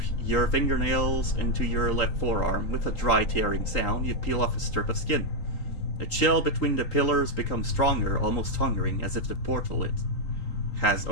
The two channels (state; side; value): late; right; 3.8 ms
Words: your fingernails into your left forearm. With a dry tearing sound, you peel off a strip of skin. The chill between the pillars becomes stronger, almost hungering, as if the portal it has